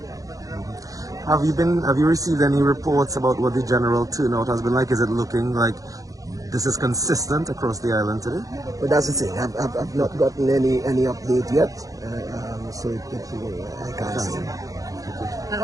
Have you received any reports about what the general turnout has been like? Is it looking like this is consistent across the island today? But that's the thing. I've not gotten any update yet, so I can't say. And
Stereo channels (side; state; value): left; late; 0.17 ms